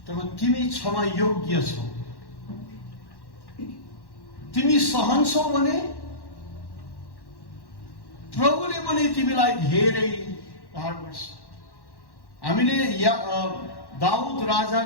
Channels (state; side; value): late; right; 1.1 ms